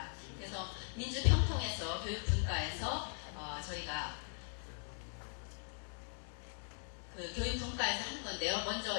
그래서 민주평통에서 교육분과에서 저희가 그 교육분과에서 하는 건데요.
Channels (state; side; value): silent; right; 51 dB below the other